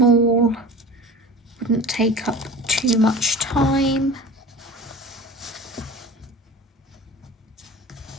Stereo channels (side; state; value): both; normal; correlation 0.37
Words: Wouldn't take up too much time.